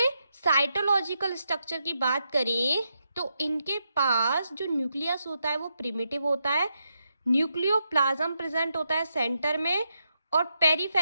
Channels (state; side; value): inverted; both; correlation -0.83